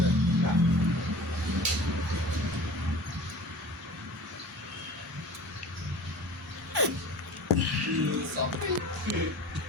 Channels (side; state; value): both; normal; correlation 0.40